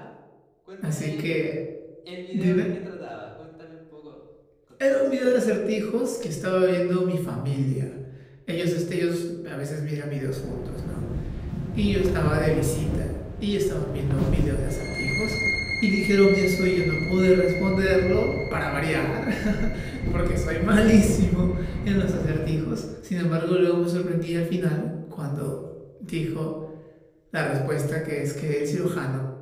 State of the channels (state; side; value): identical; both; correlation 1.00